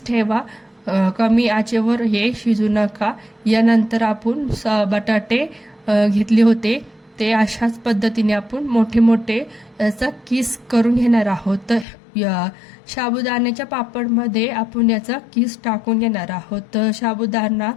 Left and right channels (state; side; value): drops out; right; at 11.9 s